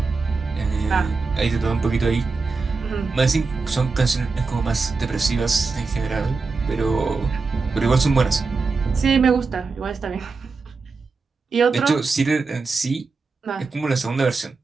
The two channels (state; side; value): quieter; left; 4.3 dB